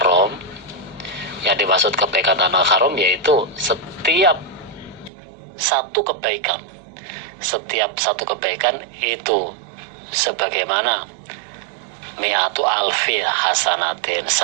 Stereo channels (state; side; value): drops out; left; at 5.1 s